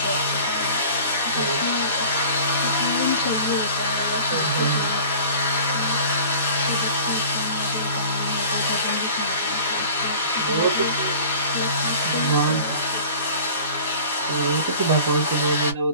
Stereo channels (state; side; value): inverted; both; correlation -0.43